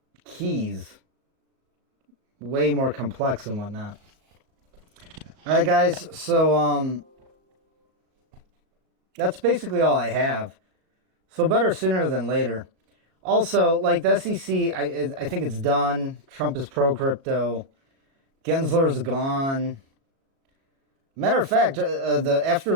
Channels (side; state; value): left; late; 37 ms